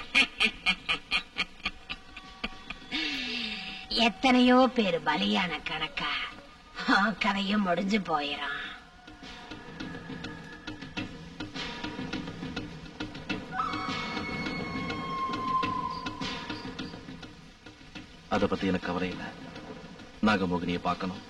எத்தனையோ பேர் பலியான கணக்கா கதையும் முடிஞ்சு போயிடும். அத பத்தி எனக்கு கவலை இல்ல. நாகமோகினியை பார்க்கணும்,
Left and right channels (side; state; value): both; identical; correlation 1.00